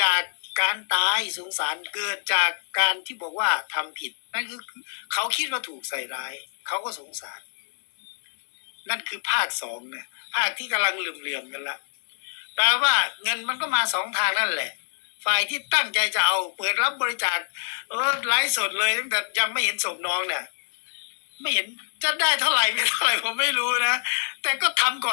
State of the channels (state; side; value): silent; right; digital silence